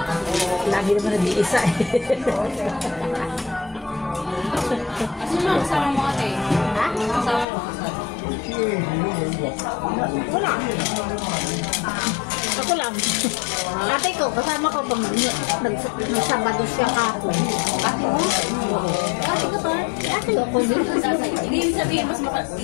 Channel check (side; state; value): right; drops out; at 7.5 s